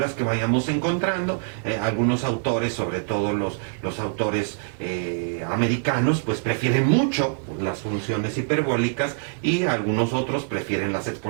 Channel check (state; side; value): silent; left; digital silence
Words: que vayamos encontrando, algunos autores, sobre todo los autores americanos, pues prefieren mucho las funciones hiperbólicas, y algunos otros prefieren las